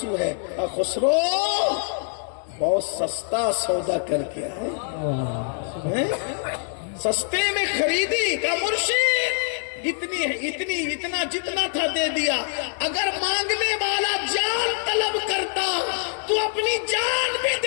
ہے، اور خسرو بہت سستا سودا کر کے آئے، سستے میں خریدی کا مرشد اتنا جتنا تھا دے دیا۔ اگر مانگنے والا جان طلب کرتا تو اپنی جان بھی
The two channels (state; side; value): silent; right; 62 dB below the other